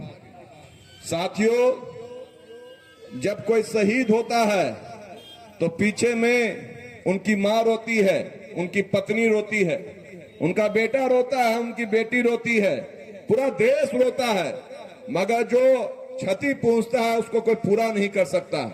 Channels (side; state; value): both; identical; correlation 1.00